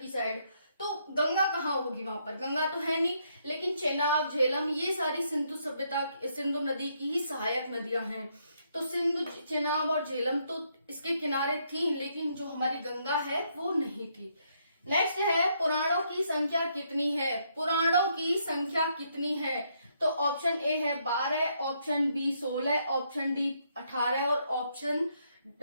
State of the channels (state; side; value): inverted; both; correlation -0.74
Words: साइड। तो गंगा कहाँ होगी? वहां पर गंगा तो है नहीं, लेकिन चेनाब, झेलम ये सारी सिंधु नदी की ही सहायक नदियां हैं। तो सिंधु, चेनाब और झेलम तो इसके किनारे थी, लेकिन जो हमारी गंगा है वो नहीं थी। नेक्स्ट है पुराणों की संख्या कितनी है? पुराणों की संख्या कितनी है? तो ऑप्शन ए है 12, ऑप्शन बी 16, ऑप्शन डी 18 और ऑप्शन